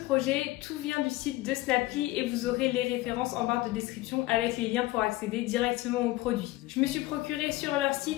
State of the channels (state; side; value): quieter; right; 18.4 dB